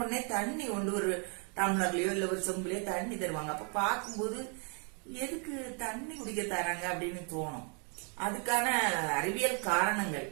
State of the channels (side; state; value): left; quieter; 38.3 dB